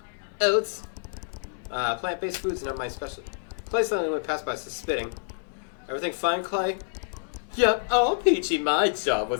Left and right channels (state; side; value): silent; right; digital silence